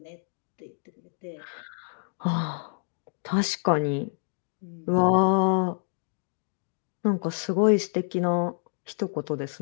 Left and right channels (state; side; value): silent; right; digital silence